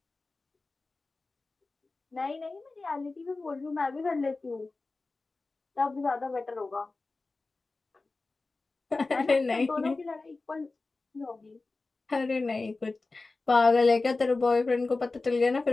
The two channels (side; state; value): right; quieter; 3.5 dB